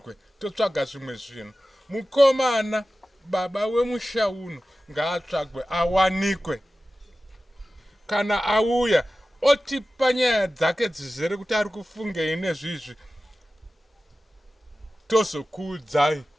totsvaga zvimwe zvinhu mukomana baba wemusha uno ngaatsvagwe awanikwe kana auya otipa nyaya dzake dzizere kuti ari kufungei nezvizvi tozokuudzai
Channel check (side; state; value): both; normal; correlation 0.95